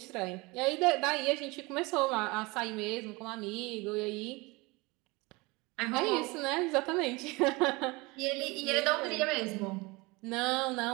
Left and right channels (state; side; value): quieter; left; 24.6 dB